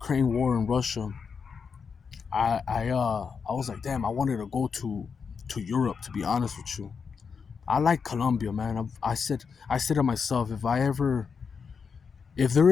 war in Russia, I was like, damn, I wanted to go to Europe, to be honest with you. I like Colombia, man. I said to myself, if there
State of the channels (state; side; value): quieter; right; 5.9 dB